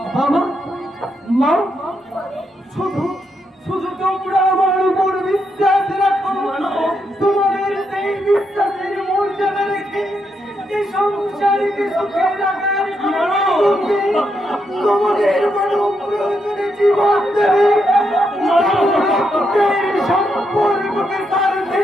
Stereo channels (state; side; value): normal; both; correlation 0.80